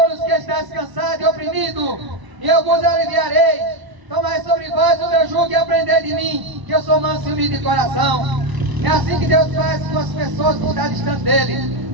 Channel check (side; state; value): left; late; 1.0 ms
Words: que estáis cansados e oprimidos, e eu vos aliviarei. Tomai sobre vós o meu jugo e aprendei de mim, que eu sou manso e humilde de coração. É assim que Deus faz com as pessoas que estão distante